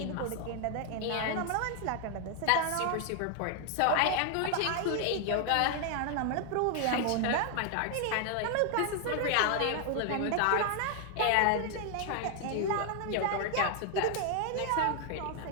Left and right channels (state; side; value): different; both; correlation 0.00